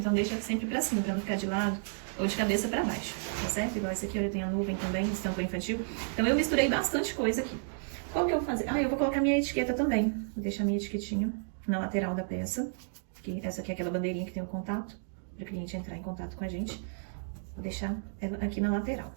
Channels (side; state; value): left; silent; digital silence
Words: deixa sempre pra cima, pra não ficar de lado ou de cabeça pra baixo, tá certo? Igual esse aqui, olha, tem a nuvem também, estampa infantil. Então eu misturei bastante coisa aqui. Qual que eu vou fazer? Ah, eu vou colocar minha etiqueta também. Vou deixar minha etiquetinha na lateral da peça. Essa aqui é aquela bandeirinha que tem o contato, para o cliente entrar em contato com a gente. Vou deixar ela aqui na lateral.